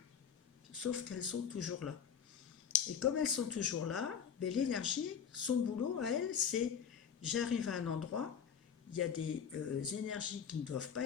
Sauf qu'elles sont toujours là. Et comme elles sont toujours là, ben, l'énergie, son boulot à elle, c'est j'arrive à un endroit, il y a des énergies qui ne doivent pas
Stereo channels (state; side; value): quieter; right; 7.5 dB